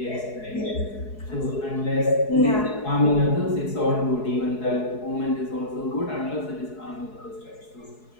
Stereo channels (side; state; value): right; late; 4.7 ms